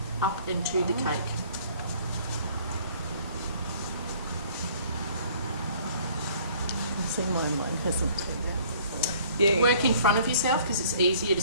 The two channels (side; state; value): both; inverted; correlation -0.55